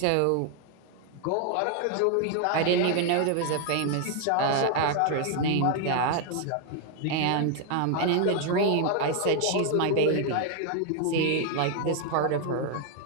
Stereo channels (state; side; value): different; both; correlation 0.00